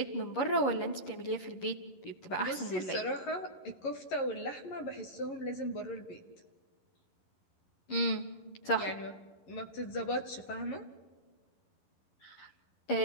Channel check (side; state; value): right; late; 11 ms